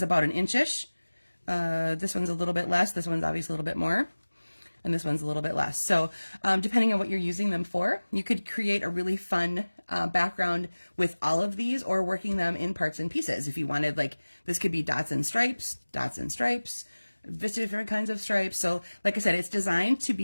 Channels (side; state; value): both; inverted; correlation -1.00